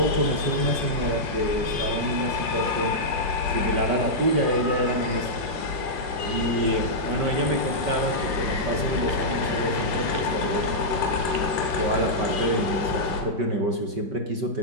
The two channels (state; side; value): late; left; 5.2 ms